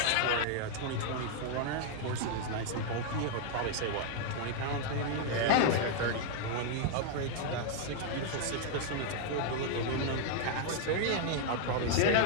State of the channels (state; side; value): different; both; correlation 0.00